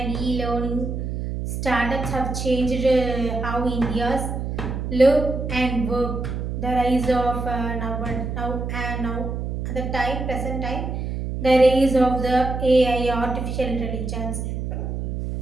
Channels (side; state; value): right; noise; hum, 4 dB below the sound